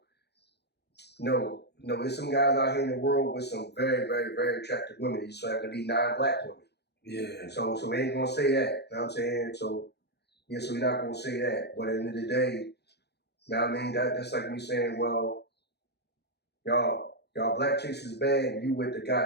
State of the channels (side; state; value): right; late; 0.48 ms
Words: There's some guys out here in the world with some very, very, very attractive women. You just have to be non-black women. Yeah. So we ain't gonna say that. You know what I'm saying? So yeah, so we're not gonna say that. But at the end of the day, you know what I mean? That's like me saying, well, y'all black chicks is bad and you with the